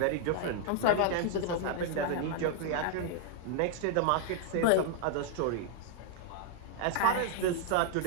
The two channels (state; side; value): different; both; correlation 0.00